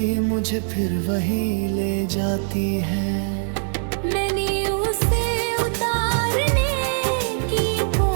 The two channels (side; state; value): left; silent; 64 dB below the other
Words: मुझे फिर वही ले जाती है। मैंने उसे उतारने की